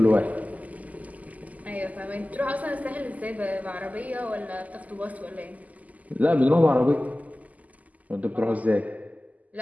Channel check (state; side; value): late; left; 0.076 ms